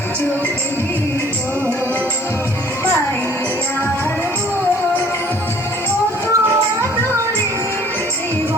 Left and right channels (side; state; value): right; noise; hiss, 28 dB below the sound